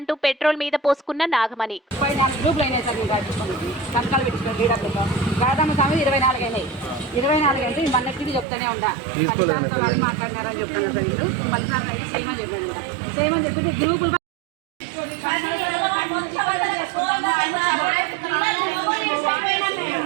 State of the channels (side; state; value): left; drops out; at 8.5 s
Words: పెట్రోల్ మీద పోసుకున్న నాగమణి. 24 అంటే మన్నెట్టిది చెప్తానే ఉండా మాట్లాడినారని చెప్తాను సార్. వీళ్ళు మళ్ళీ సేమ్ అని చెప్పానంట. సేమ్ అని చెప్పి గ్రూపులు